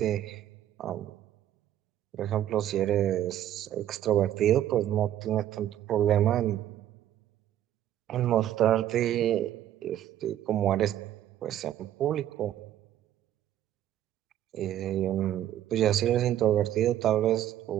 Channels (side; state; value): left; quieter; 11.8 dB